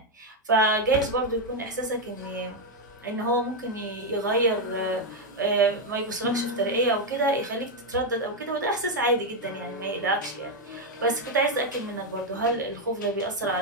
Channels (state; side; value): normal; both; correlation 0.03